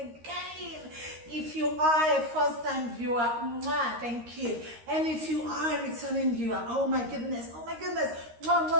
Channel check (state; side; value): late; left; 13 ms